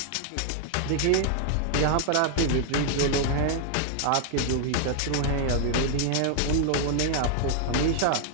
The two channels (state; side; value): different; both; correlation 0.00